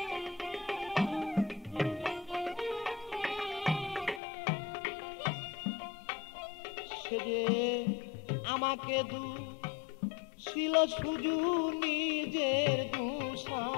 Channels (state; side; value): drops out; right; at 4.2 s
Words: সে যে আমাকে ছিল শুধু নিজের দুষা